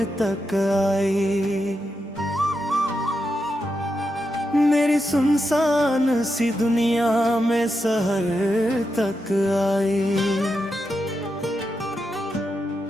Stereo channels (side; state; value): both; normal; correlation 0.86